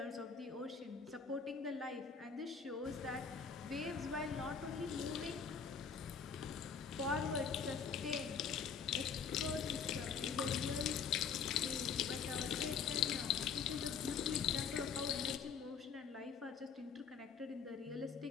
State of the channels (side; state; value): right; quieter; 6.3 dB